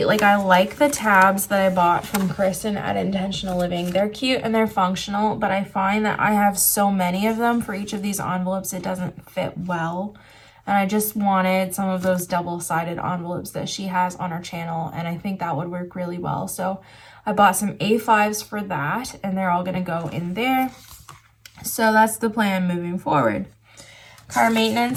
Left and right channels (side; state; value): both; identical; correlation 1.00